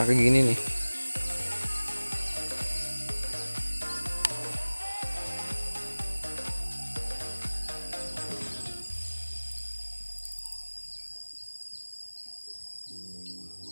kayak gini nih.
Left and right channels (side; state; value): both; inverted; correlation -1.00